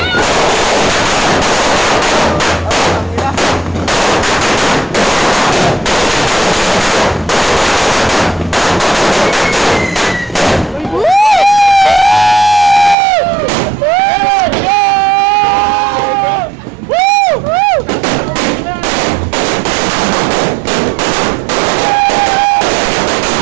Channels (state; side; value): drops out; left; at 13.0 s